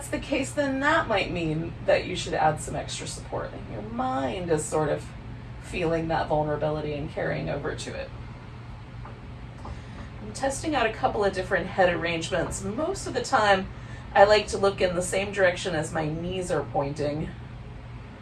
the case, then that might mean that you should add some extra support. And your mind is sort of feeling that vulnerability and carrying over to it. I'm testing out a couple of different head arrangements. Most of the time, I like to look in the same direction as my knees are pointing.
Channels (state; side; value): identical; both; correlation 1.00